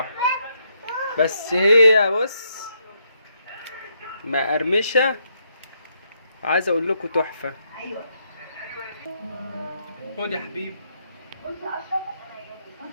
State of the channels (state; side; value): inverted; both; correlation -0.77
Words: بس هي بص مقرمشة، عايز اقول لكم تحفة. خد يا حبيبي.